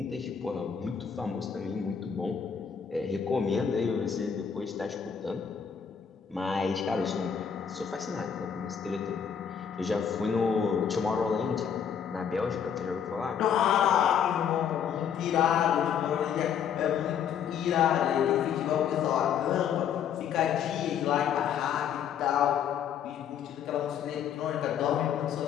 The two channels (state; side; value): quieter; right; 7.9 dB